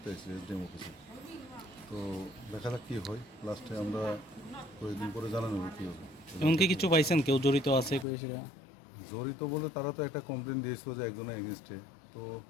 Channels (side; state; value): right; drops out; at 8.1 s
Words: এসেছি এসডিএম অফিসে। তো দেখা যাক কী হয়, লাস্টে আমরা কয়েকদিন পরে জানানো হবে কী হবে। এমনকি কিছু পাইছেন কেউ জড়িত আছে জড়িত বলে তারা তো একটা কমপ্লেন দিয়েছিল যে একজনের এগেনস্টে। তো